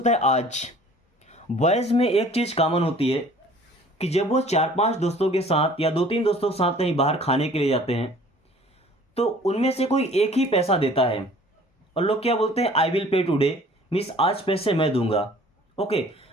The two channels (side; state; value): both; normal; correlation 0.51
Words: है आज। बॉयज में एक चीज कॉमन होती है कि जब वो 4-5 दोस्तों के साथ या 2-3 दोस्तों के साथ कहीं बाहर खाने के लिए जाते हैं, तो उनमें से कोई एक ही पैसा देता है और लोग क्या बोलते हैं, I will pay today means आज पैसे मैं दूंगा। ओके,